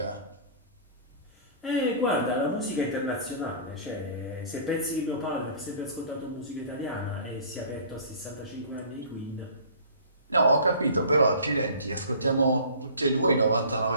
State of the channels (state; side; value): inverted; both; correlation -0.44